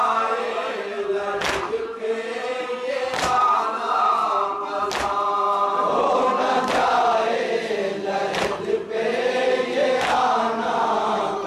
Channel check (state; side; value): identical; both; correlation 1.00